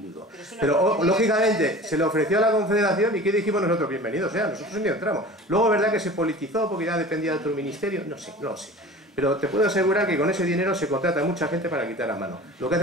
Pero, lógicamente, se le ofreció a la Confederación y ¿qué dijimos nosotros? Bienvenidos sea, nosotros ni entramos. Luego, ¿verdad que se politizó porque ya dependía de otro ministerio? No sé, no lo sé. Pero te puedo asegurar que con ese dinero se contrata a mucha gente para quitar a mano. Lo que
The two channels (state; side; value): normal; both; correlation 0.39